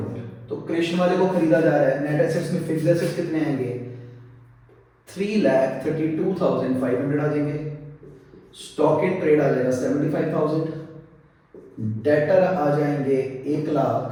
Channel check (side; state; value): both; identical; correlation 1.00